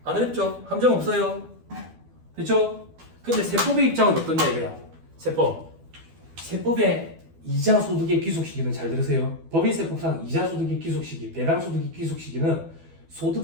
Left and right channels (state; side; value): late; left; 12 ms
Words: 안 어렵죠? 함정 없어요. 됐죠? 근데 세법의 입장은 어떠냐 이거야. 세법의 이자 소득의 귀속 시기는 잘 들으세요. 법인세법상 이자 소득의 귀속 시기, 배당 소득의 귀속 시기는